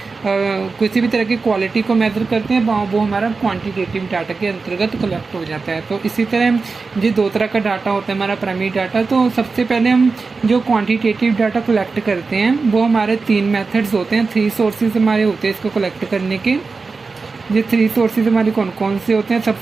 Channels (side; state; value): left; quieter; 4.3 dB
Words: किसी भी तरह की क्वालिटी को मेजर करते हैं वो हमारा क्वांटिटेटिव डाटा के अंतर्गत कलेक्ट हो जाता है। तो इसी तरह ये दो तरह का डाटा होता है हमारा प्राइमरी डाटा। तो सबसे पहले हम जो क्वांटिटेटिव डाटा कलेक्ट करते हैं वो हमारे 3 मेथड्स होते हैं, 3 सोर्सेज हमारे होते हैं इसको कलेक्ट करने के। ये 3 सोर्सेज हमारे कौन कौन से होते हैं।